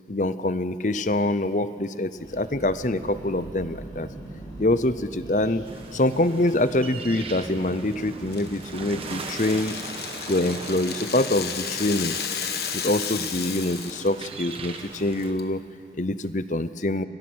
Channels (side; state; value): both; normal; correlation 0.43